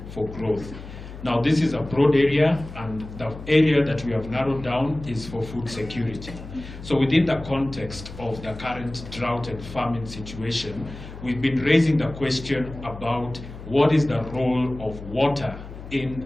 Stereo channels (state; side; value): noise; left; hum, 13 dB below the sound